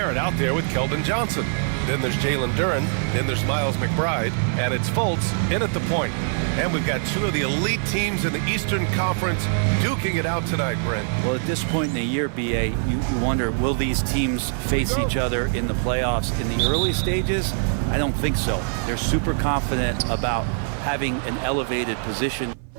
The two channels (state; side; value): silent; left; 57 dB below the other